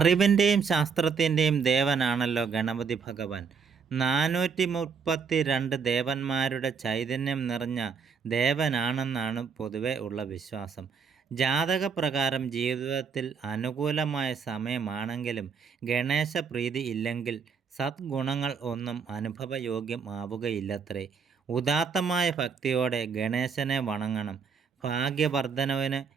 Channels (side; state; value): left; quieter; 5.9 dB